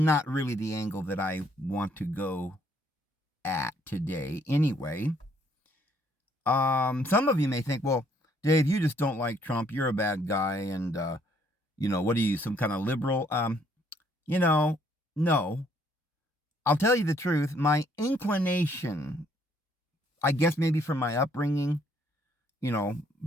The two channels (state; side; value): normal; both; correlation 0.66